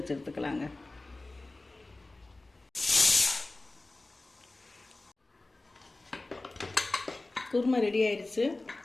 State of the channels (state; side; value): quieter; right; 3.0 dB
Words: எடுத்துக்கலாங்க. குருமா ரெடி ஆயிடுச்சு.